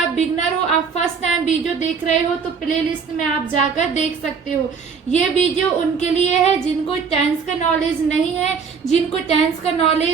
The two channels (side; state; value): left; quieter; 5.8 dB